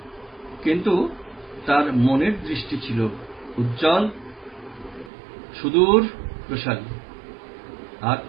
কিন্তু তার মনের দৃষ্টি ছিল উজ্জ্বল, সুদূর প্রসারী, আর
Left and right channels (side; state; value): left; drops out; at 5.1 s